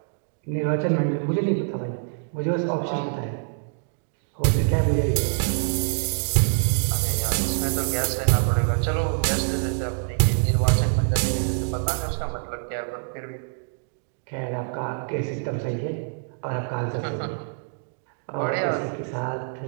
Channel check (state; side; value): silent; left; digital silence